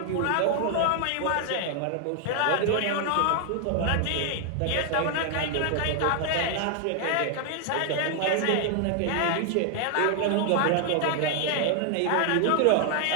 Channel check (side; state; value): both; different; correlation 0.00